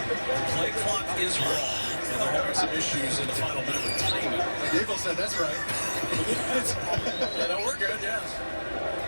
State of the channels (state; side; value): inverted; both; correlation -1.00